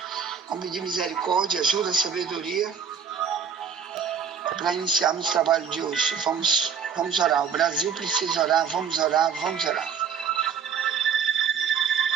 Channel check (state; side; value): quieter; left; 7.0 dB